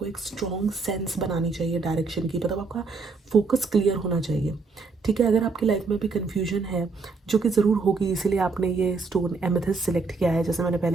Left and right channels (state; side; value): quieter; left; 4.3 dB